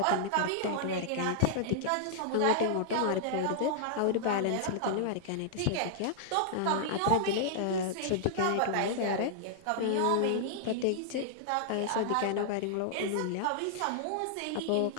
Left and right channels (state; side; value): different; both; correlation -0.01